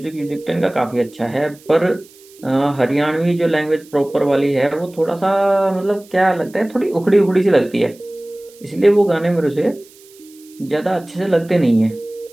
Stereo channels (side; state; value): right; noise; hiss, 26 dB below the sound